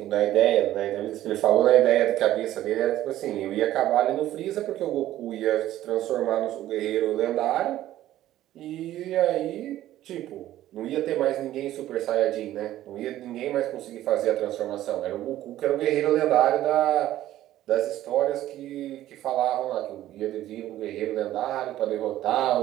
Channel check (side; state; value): left; quieter; 13.7 dB